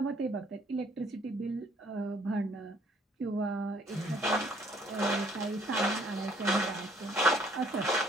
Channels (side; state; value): both; normal; correlation 0.62